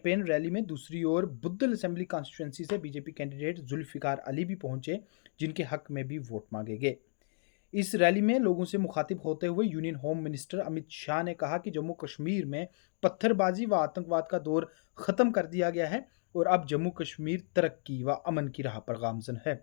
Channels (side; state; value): right; silent; digital silence